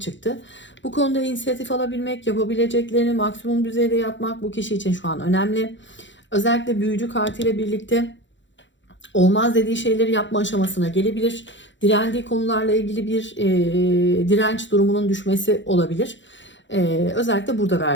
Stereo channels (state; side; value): late; right; 0.54 ms